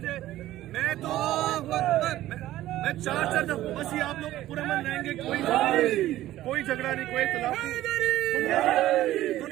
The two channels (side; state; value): left; quieter; 14.6 dB